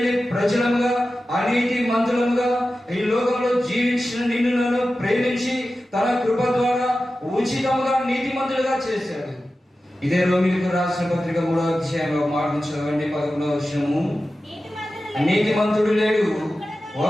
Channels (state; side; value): normal; both; correlation 0.94